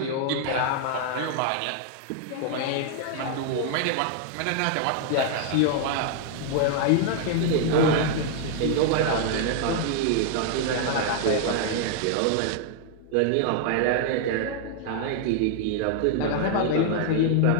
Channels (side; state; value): both; different; correlation 0.00